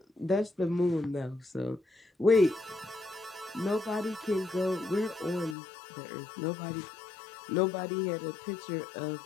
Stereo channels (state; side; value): drops out; right; at 5.6 s